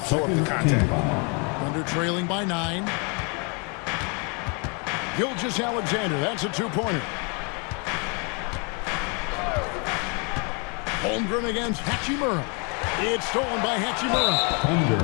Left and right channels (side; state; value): right; quieter; 34.4 dB